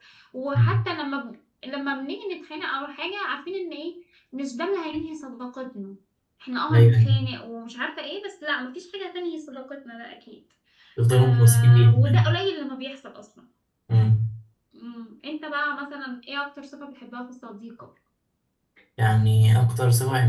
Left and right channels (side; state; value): both; identical; correlation 1.00